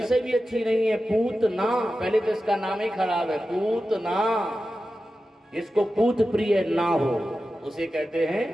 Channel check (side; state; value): both; normal; correlation 0.93